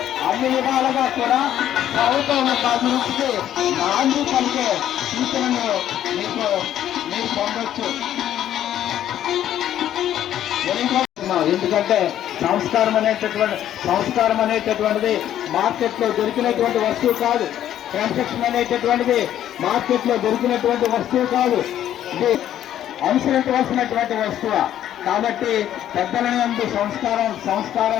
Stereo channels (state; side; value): quieter; right; 11.4 dB